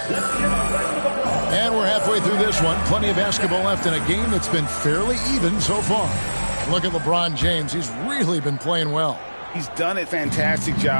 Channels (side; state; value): both; inverted; correlation -1.00